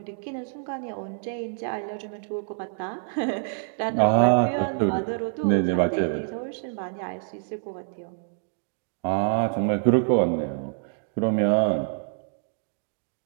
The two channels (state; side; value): silent; left; digital silence